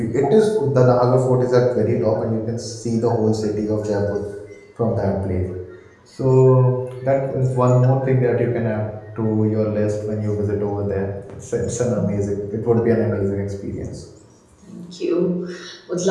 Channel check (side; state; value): both; identical; correlation 1.00